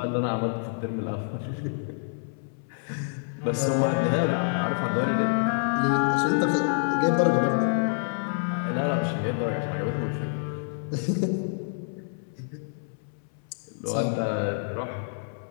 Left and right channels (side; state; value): right; silent; 60 dB below the other